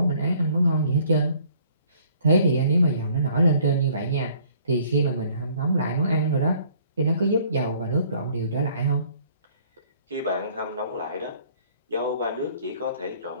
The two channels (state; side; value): inverted; both; correlation -0.58